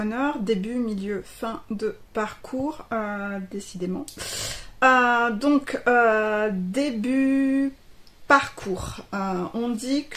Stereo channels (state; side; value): identical; both; correlation 1.00